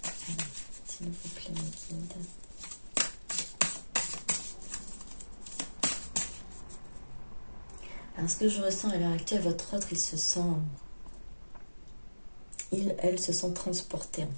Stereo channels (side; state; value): both; inverted; correlation -1.00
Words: s'il vous plaît, mes guides. Alors, ce que je ressens à l'heure actuelle, votre autre, elle se sent transportée, en